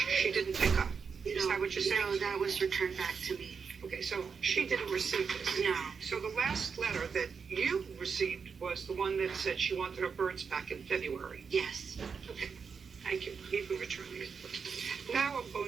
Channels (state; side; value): quieter; left; 5.8 dB